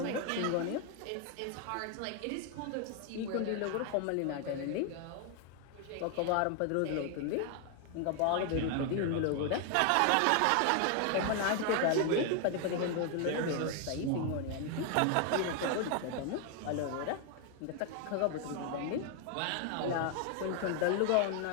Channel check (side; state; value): both; different; correlation 0.01